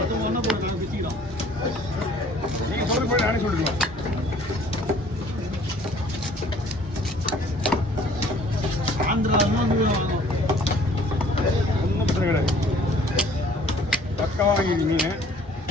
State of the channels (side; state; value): both; normal; correlation 0.55